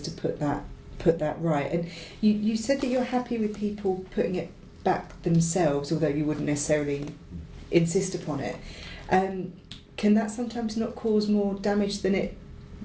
put that right. And you said that you're happy with people putting it back themselves, although you wouldn't necessarily insist upon it. Can that sometimes not cause more damage than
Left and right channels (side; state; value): both; identical; correlation 1.00